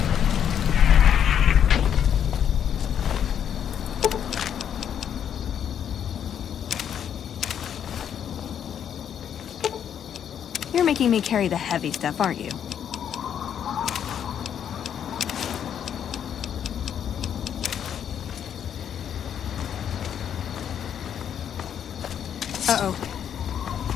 You're making me carry the heavy stuff, aren't you? Uh-oh.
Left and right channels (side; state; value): right; quieter; 9.0 dB